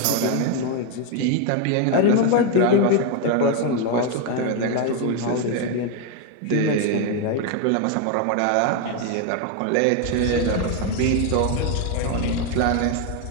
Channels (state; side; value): different; both; correlation 0.01